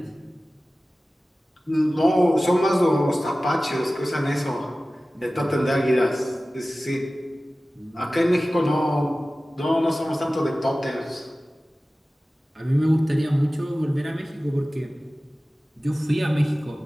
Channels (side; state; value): both; normal; correlation 0.96